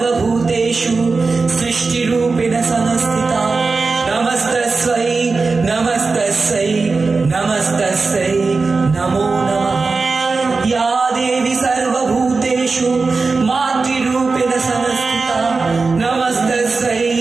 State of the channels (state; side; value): quieter; left; 4.1 dB